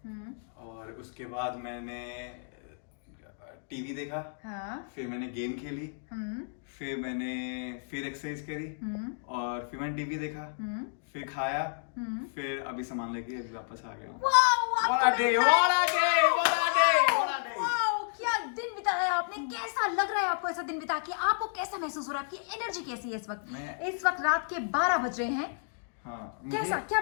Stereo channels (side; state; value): right; silent; digital silence